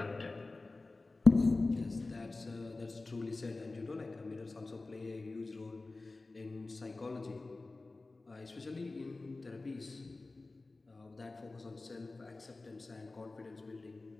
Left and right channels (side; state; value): right; quieter; 3.3 dB